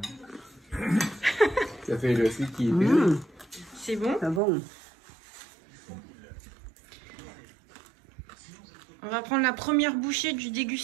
Ça fait le celui qui est C'est bon? C'est bon. On va prendre la première bouchée du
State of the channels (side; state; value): left; drops out; at 4.4 s